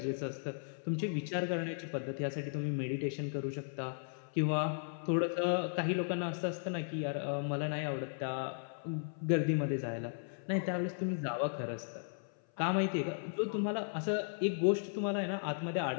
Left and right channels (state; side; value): silent; right; 54 dB below the other